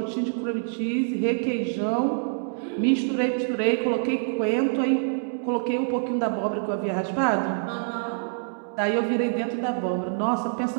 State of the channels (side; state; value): left; silent; digital silence